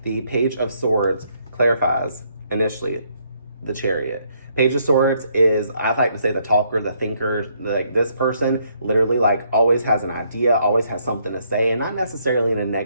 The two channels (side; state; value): both; inverted; correlation -0.71